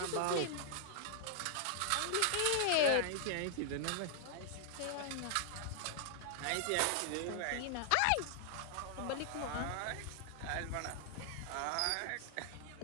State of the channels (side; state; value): both; different; correlation 0.00